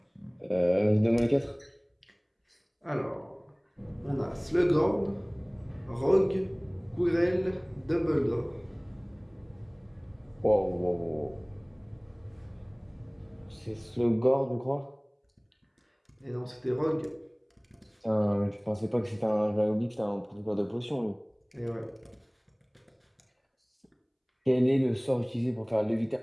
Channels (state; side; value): identical; both; correlation 1.00